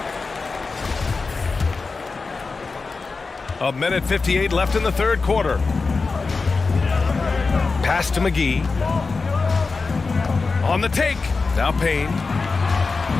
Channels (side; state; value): right; quieter; 4.2 dB